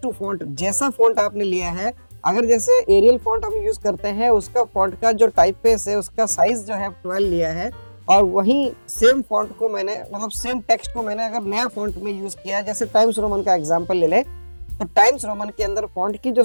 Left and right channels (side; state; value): both; inverted; correlation -1.00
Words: टू फॉन्ट। जैसा फॉन्ट आपने लिया है, अगर जैसे एरियल फॉन्ट हम यूज करते हैं उसका फॉन्ट का जो टाइप फेस है उसका साइज जो है 12 लिया है और वहीं सेम फॉन्ट को मैंने मतलब सेम टेक्स्ट को मैंने अगर नया फॉन्ट में यूज किया, जैसे टाइम्स रोमन का एग्जांपल ले ले तो टाइम्स रोमन के अंदर फॉन्ट की जो